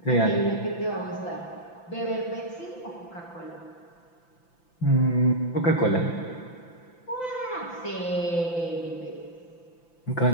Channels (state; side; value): late; right; 5.9 ms